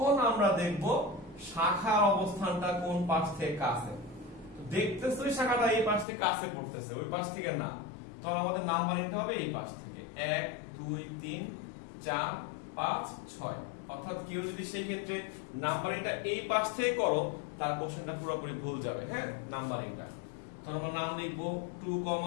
আমরা দেখব শাখার অবস্থানটা কোন পাশ থেকে কাছে। দেখতেছে ওই শাখাটা এই পাশ থেকে কাছে পড়তেছে, ওই পাশ থেকে না, তখন আমাদের নাম্বারিংটা হবে এই পাশ থেকে 1 2 3 4 5 6। অর্থাৎ কেউ যদি সেই ক্ষেত্রে নাম্বারিংটা এই পাশ থেকে করো তার কোশ্চেনটা পুরোপুরি ভুল যাবে। হ্যাঁ, নাম্বারিংটা তখন আমরা নাম লিখবো 2,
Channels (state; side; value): drops out; right; at 6.1 s